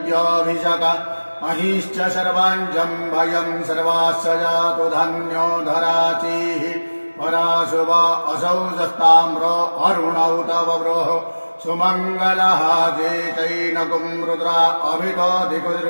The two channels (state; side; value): inverted; both; correlation -1.00